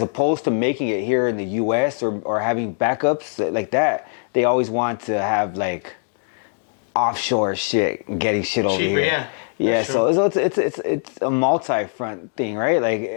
opposed to making it here in the U.S. or having backups like that, they always want to have like offshore shit and getting shit over cheaper, here. Yeah, so it's a multi-front thing, right? Like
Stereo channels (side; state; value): right; silent; digital silence